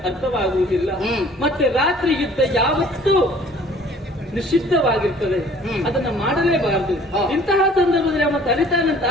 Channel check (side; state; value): both; normal; correlation 0.53